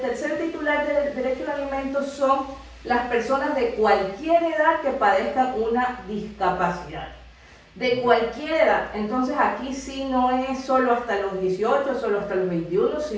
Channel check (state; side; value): identical; both; correlation 1.00